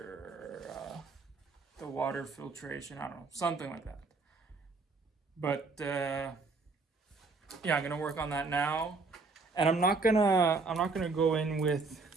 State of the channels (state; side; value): quieter; left; 4.0 dB